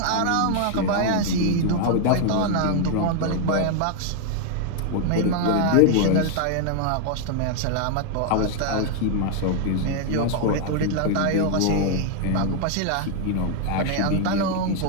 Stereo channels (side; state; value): both; different; correlation 0.00